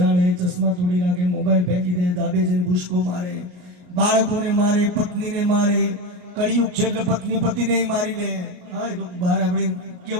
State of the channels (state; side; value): late; left; 34 ms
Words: ચશ્મા તોડી નાખે મોબાઈલ ફેંકી દે ધાબે જઈને ભૂસકો મારે બાળકોને મારે પત્નીને મારે કળિયુગ છે એટલે પત્ની પતિને મારી લે હા તો બહાર આપણે